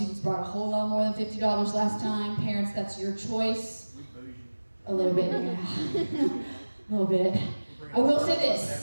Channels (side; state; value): both; inverted; correlation -1.00